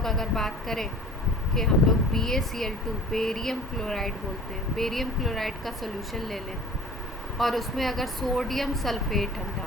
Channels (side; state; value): both; normal; correlation 0.44